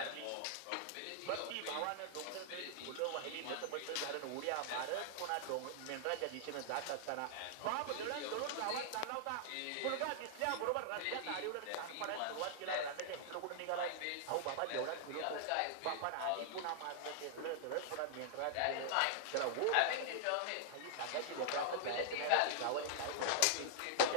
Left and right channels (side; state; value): both; different; correlation -0.01